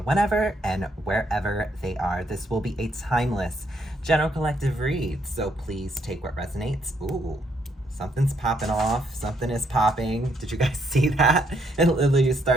whenever and wherever they are. This will be a timeless general collective read, so please take what resonates. Ooh, something's popping off. Something is popping. Did you guys see that? It literally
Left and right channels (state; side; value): normal; both; correlation 0.73